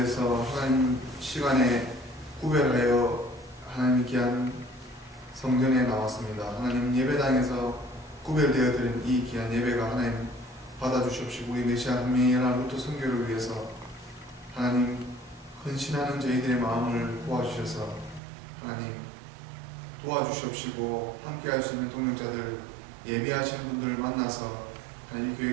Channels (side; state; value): left; drops out; at 18.2 s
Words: 하나님 시간에 구별하여 하나님 귀한 성전에 나왔습니다. 하나님 예배당에서 구별되어 드린 이 귀한 예배가 하나님 받아주시옵시고, 우리 메시아 한미연합 루터 선교를 위해서 하나님 헌신하는 저희들의 마음을 도와주셔서 하나님 도와주시옵시고, 함께 할 수 있는 동역자들, 예배하시는 분들 만나서 하나님